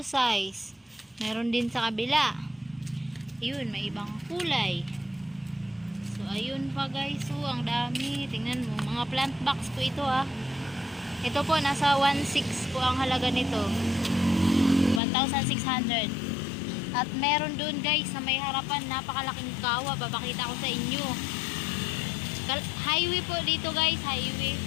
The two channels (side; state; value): right; drops out; at 15.0 s